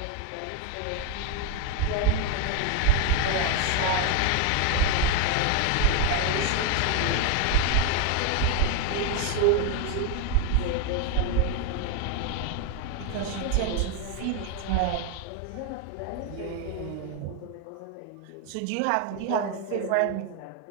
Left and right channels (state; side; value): different; both; correlation 0.01